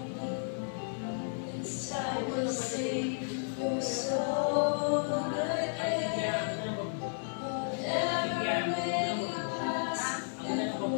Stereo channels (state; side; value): silent; right; digital silence